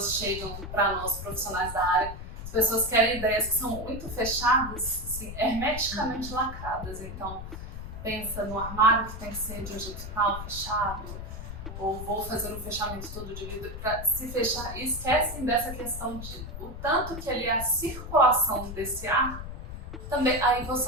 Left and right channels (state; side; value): noise; left; rumble, 9 dB below the sound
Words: chegam para nós, profissionais da área, as pessoas querem ideias que são muito fechadas, assim, hermeticamente lacradas. Então, pensa no armário que tem que ser de um jeito tal, fechado, ou vou fazer um fechamento todo de vidro para se fechar, e esquecem dessa questão de o tanto que ali é a circulação desse ar. Também, aí você